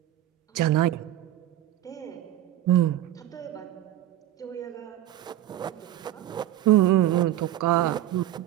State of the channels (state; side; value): quieter; left; 13.5 dB